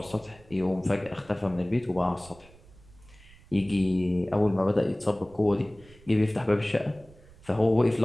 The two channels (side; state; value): right; noise; rumble, 24 dB below the sound